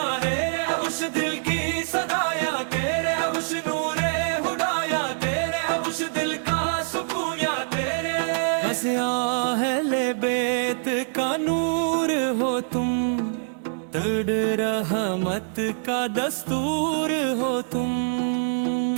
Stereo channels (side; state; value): left; silent; digital silence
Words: है, अब उस दिल की सदाया तेरे, अब उस नूरे हुदाया तेरे, अब उस दिल का सुकून या तेरे। बस अहले बेत का नूर हो तुम, दर्द रहमत का दस्तूर हो तुम।